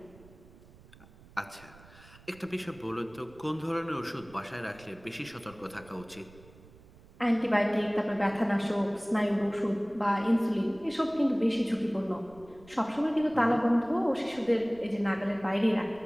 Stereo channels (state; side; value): noise; right; rumble, 23 dB below the sound